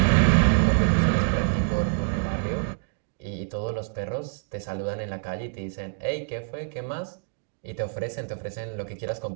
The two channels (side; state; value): left; silent; digital silence